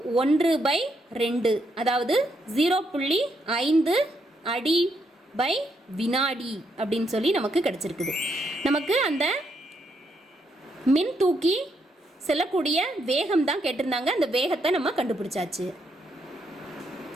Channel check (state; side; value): normal; both; correlation 0.77